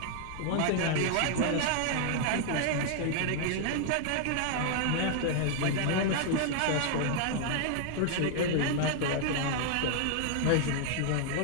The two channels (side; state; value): both; different; correlation 0.00